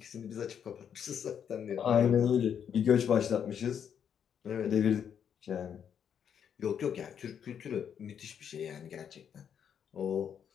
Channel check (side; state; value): right; quieter; 8.2 dB